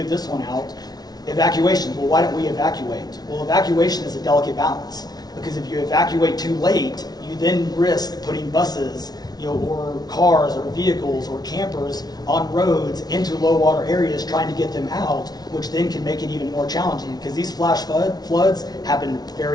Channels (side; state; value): right; late; 0.19 ms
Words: this one out. Evacuation. Well, why don't we evacuate? Well, evacuation is a delicate balance, because if you evacuate too late, you then risk putting buses, or cars or vehicles or campers on roads into low water areas trying to get them out, which then can make it even more challenging, because these flash floods happen